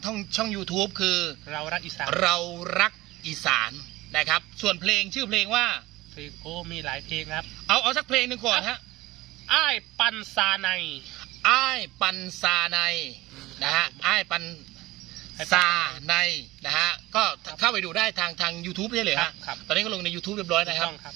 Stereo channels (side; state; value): left; quieter; 18.6 dB